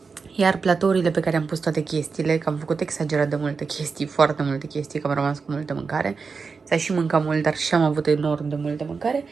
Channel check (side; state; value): left; quieter; 4.9 dB